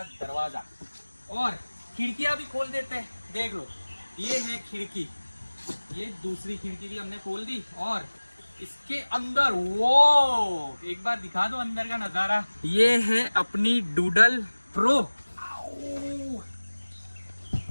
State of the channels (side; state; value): both; inverted; correlation -1.00